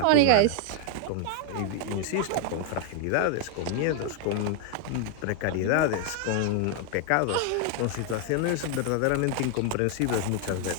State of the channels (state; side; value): different; both; correlation 0.00